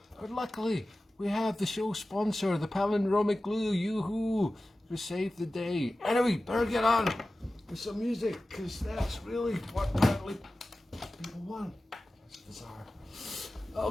But luckily, we have the show sponsor, the palindromic glue. Yoo-hoo! To save the day. Anyway, better get on with some music, because that's really what apparently people want. That's bizarre.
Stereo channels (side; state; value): both; normal; correlation 0.95